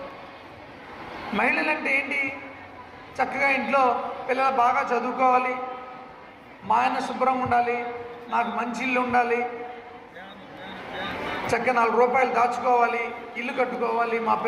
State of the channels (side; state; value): both; identical; correlation 1.00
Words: మహిళలు అంటే ఏంటి? చక్కగా ఇంట్లో పిల్లలు బాగా చదువుకోవాలి, మా ఆయన శుభ్రంగా ఉండాలి, నాకు మంచి ఇల్లు ఉండాలి, చక్కగా 4 రూపాయలు దాచుకోవాలి, ఇల్లు కట్టుకోవాలి, మా